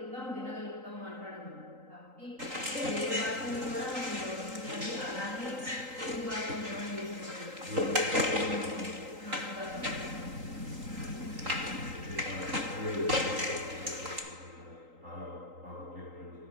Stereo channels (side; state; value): left; late; 3.8 ms